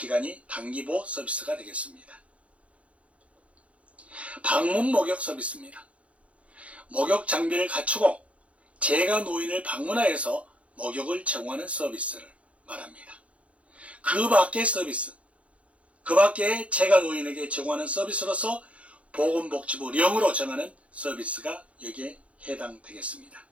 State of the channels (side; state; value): left; late; 0.064 ms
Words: 단기보호 서비스가 되겠습니다. 방문 목욕 서비스입니다. 목욕 장비를 갖추고 재가 노인을 방문하여서 목욕을 제공하는 서비스를 말합니다. 그 밖의 서비스, 그 밖에 재가 노인에게 제공하는 서비스로서 보건복지부령으로 정하는 서비스가 여기에 해당되겠습니다.